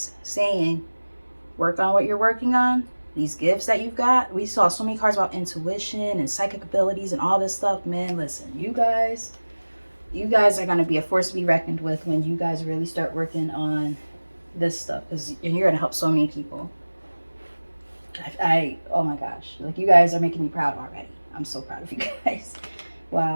saying, work on what you're working on, these gifts that you've got. We saw so many cards about intuition and psychic abilities and all this stuff. Man, listen, you guys are going to be a force to be reckoned with when you guys really start working on this stuff, because you're going to help so many people. Oh my gosh, like, you guys are making me proud already. I'm so proud of you guys.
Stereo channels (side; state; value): both; inverted; correlation -1.00